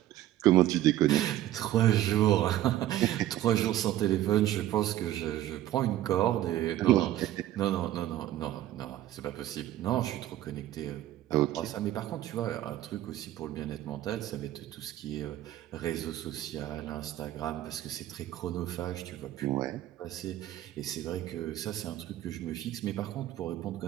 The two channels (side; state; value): left; quieter; 13.6 dB